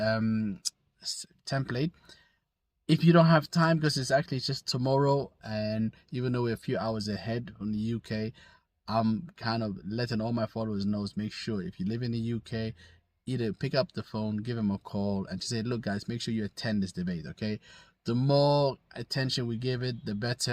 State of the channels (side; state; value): both; identical; correlation 1.00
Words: template. If you don't have time, because it's actually just tomorrow, and even though we're a few hours ahead from the UK, I'm kind of letting all my followers know, make sure if you live in the UK, either pick up the phone, give them a call, and just say, look guys, make sure you attend this debate, okay? The more attention we give it, the